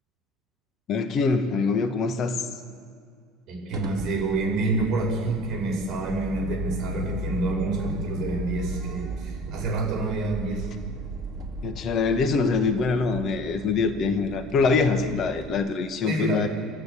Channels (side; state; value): both; normal; correlation 0.45